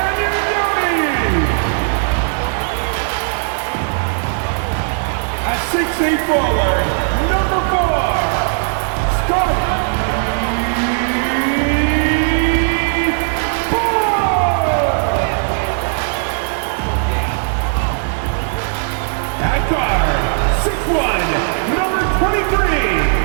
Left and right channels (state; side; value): silent; left; 60 dB below the other